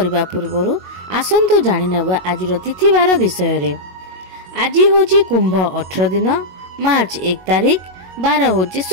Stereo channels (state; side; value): late; left; 22 ms